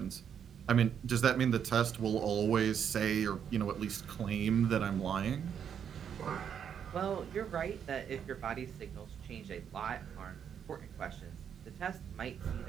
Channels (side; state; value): left; quieter; 8.2 dB